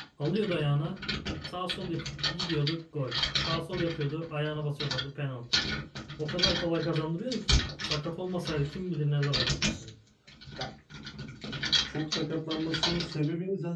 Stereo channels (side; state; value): both; identical; correlation 1.00